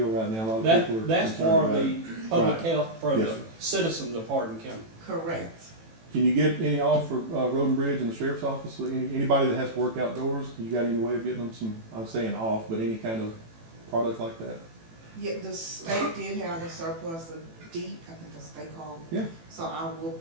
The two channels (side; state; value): left; late; 18 ms